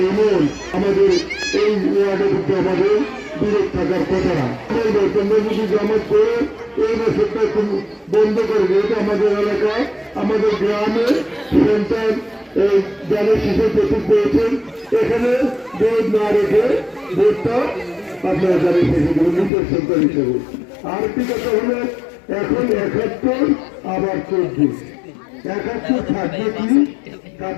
এমন আমাদের এই ওয়ার্ডে কিন্তু আমাদের দূরে থাকার কথা না বলবো তোমরা যদি জামাত করে এই বছরটা বন্ধ করে যেহেতু আমাদের এলাকায় আমাদের গ্রামে সন্তান এই গ্রামের শিশু প্রস্তুত পেয়েছেন এখানে ভোট না রেখে ভোটটা আপনারা জানেন নিজের সন্তান হিসেবে আরেকটি কথা হলো এখন 71 আবার 24 71 থাকবে কি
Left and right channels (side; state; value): right; drops out; at 19.5 s